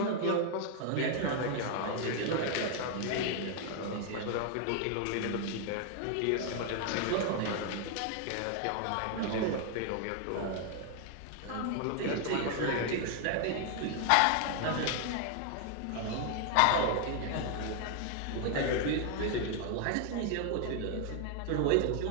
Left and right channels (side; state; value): both; different; correlation 0.00